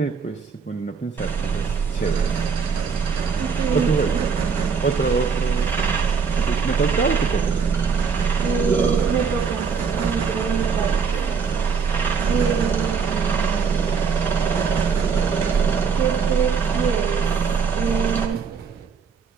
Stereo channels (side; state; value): left; quieter; 5.8 dB